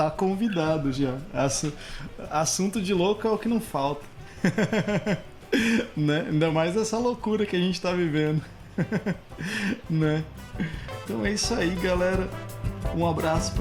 convidado já. Assunto de louco é o que não falta. Né? Ainda mais essa loucura que a gente tá vivendo. Né? Então é isso aí, galera. Um abraço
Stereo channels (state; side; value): identical; both; correlation 1.00